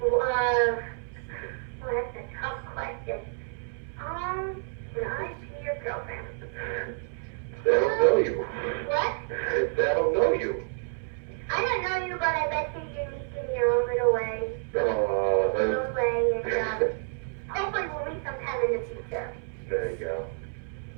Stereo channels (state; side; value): silent; left; 59 dB below the other